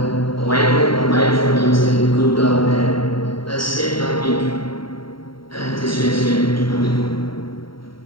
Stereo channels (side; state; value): right; late; 0.74 ms